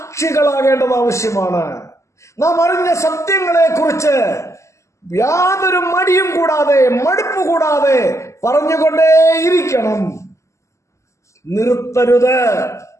ആവശ്യമാണ്. നാം അറിഞ്ഞ സത്യങ്ങളെ കുറിച്ച് യാതൊരു മടിയും കൂടാതെ മടുപ്പ് കൂടാതെ പറഞ്ഞുകൊണ്ടേയിരിക്കണം. നിർത്തരുത്.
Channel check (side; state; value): right; late; 0.14 ms